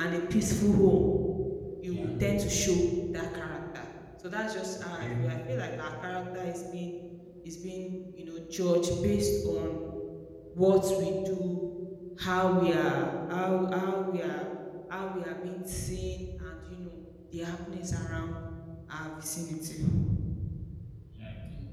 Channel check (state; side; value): identical; both; correlation 1.00